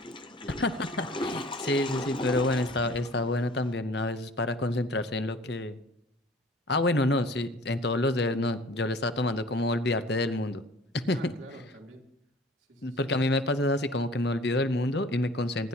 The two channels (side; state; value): both; normal; correlation 0.48